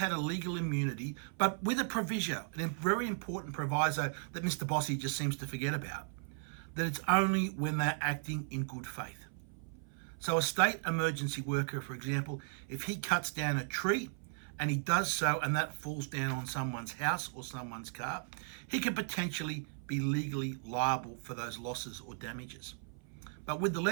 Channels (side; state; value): left; silent; 54 dB below the other